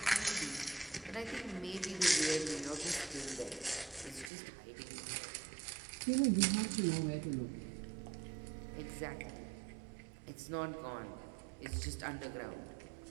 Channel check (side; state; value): left; drops out; at 4.3 s